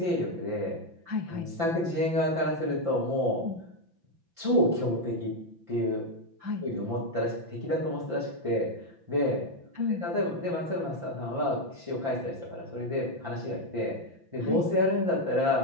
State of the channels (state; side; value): late; left; 5.9 ms